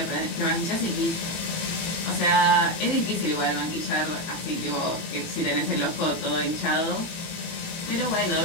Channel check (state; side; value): late; right; 18 ms